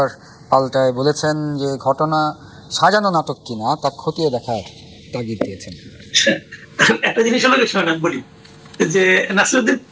পাল্টায় বলেছেন যে ঘটনা সাজানো নাটক কিনা তা খতিয়ে দেখার তাগিদ দিয়েছেন। একটা জিনিস হলো আমি বলি যে নাসিরউদ্দিন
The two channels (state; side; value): identical; both; correlation 1.00